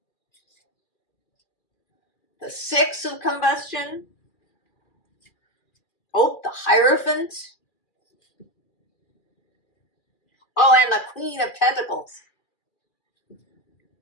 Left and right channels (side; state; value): right; late; 2.4 ms